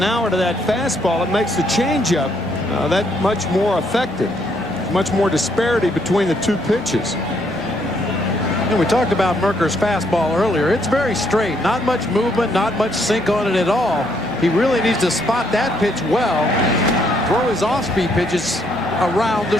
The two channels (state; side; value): normal; both; correlation 0.71